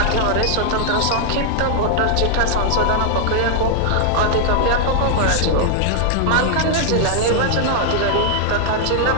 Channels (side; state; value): both; different; correlation -0.01